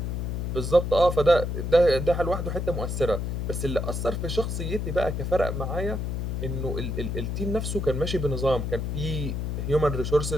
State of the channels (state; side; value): noise; left; hum, 2 dB below the sound